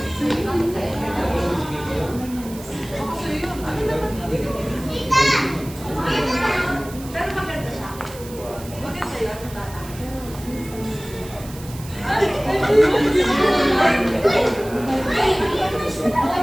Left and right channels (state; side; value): noise; right; hiss, 17 dB below the sound